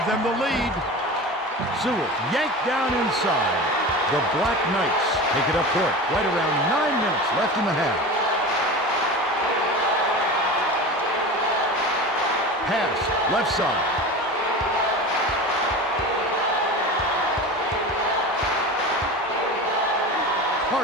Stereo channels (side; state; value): both; normal; correlation 0.31